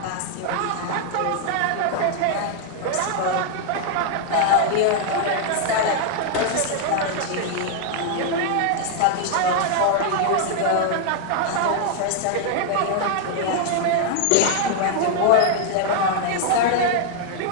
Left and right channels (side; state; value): both; different; correlation 0.00